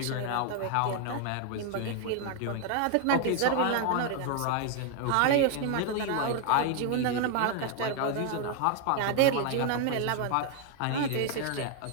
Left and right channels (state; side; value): different; both; correlation 0.00